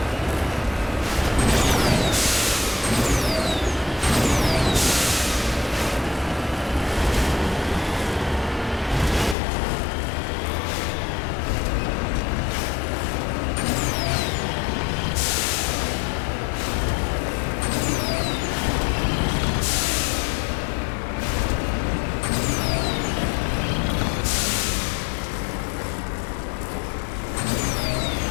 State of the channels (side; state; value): right; drops out; at 9.3 s